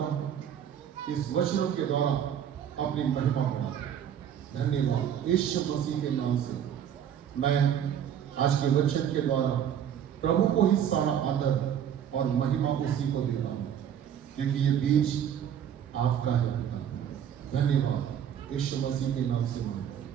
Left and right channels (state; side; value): quieter; left; 9.3 dB